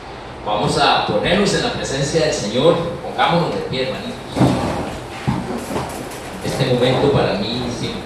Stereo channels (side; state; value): both; identical; correlation 1.00